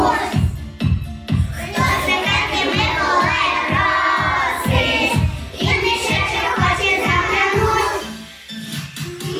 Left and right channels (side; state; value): both; identical; correlation 1.00